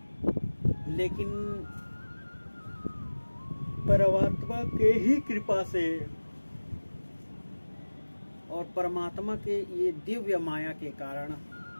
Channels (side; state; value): both; inverted; correlation -1.00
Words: लेकिन परमात्मा के ही कृपा से और परमात्मा के ये दिव्य माया के कारण,